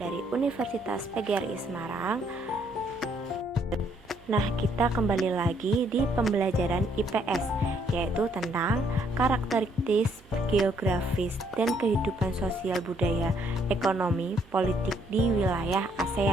Universitas PGRI Semarang. Nah, kita kembali lagi di pembelajaran IPS, yaitu tentang karakteristik geografis dan kehidupan sosial budaya, ekonomi, politik di wilayah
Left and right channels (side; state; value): right; noise; hum, 27 dB below the sound